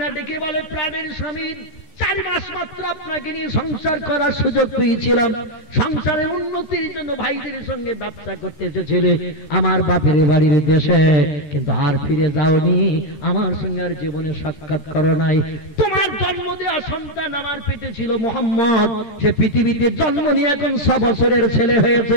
ডেকে বলে, প্রাণের স্বামী, 4 মাস মাত্র আপনাকে নিয়ে সংসার করার সুযোগ পেয়েছিলাম, সংসারের উন্নতির জন্য ভাইদের সঙ্গে ব্যবসা করতে এসেছিলে আমার বাপের বাড়ির দেশে, কিন্তু আর ফিরে যাওনি, আমার সঙ্গে আর জীবনে সাক্ষাৎ করো নাই। তোমার জন্ম দেওয়া সন্তান আমার পেটে ছিল মুহাম্মদ, সে পৃথিবীতে জন্ম নিয়ে এখন 6 বছরের ছেলে হয়েছে।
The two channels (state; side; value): late; right; 14 ms